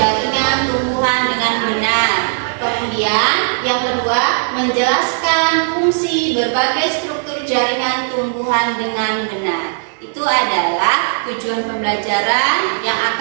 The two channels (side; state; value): left; silent; 63 dB below the other